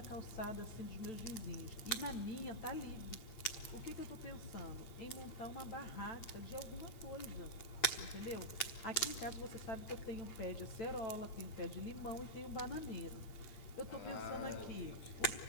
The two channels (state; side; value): late; right; 8.8 ms